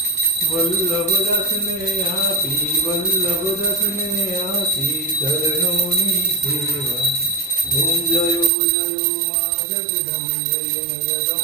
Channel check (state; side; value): drops out; left; at 8.5 s